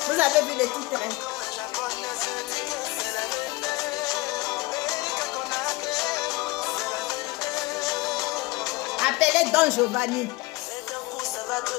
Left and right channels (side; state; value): right; quieter; 21.3 dB